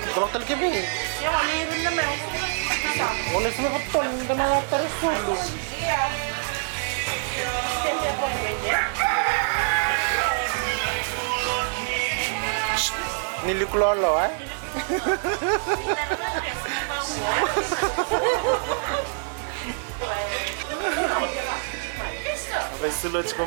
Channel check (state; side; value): silent; left; 60 dB below the other